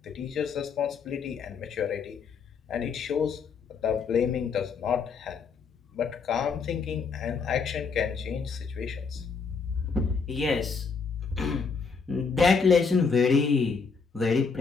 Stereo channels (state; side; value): quieter; right; 5.3 dB